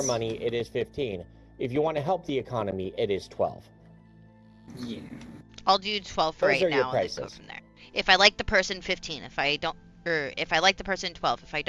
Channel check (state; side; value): identical; both; correlation 1.00